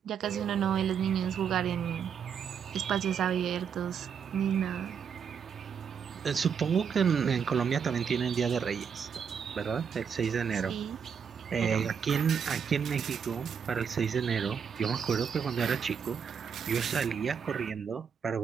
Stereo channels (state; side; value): quieter; left; 7.0 dB